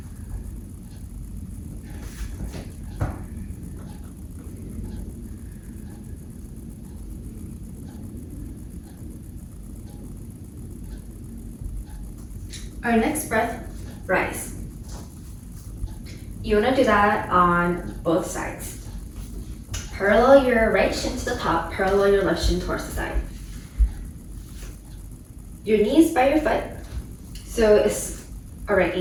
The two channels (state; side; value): identical; both; correlation 1.00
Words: Our next breath, rise. You want to do that on both sides. Parallel your right shin to the top, parallel your left shin towards the side. Your knees by your foot, so it's a right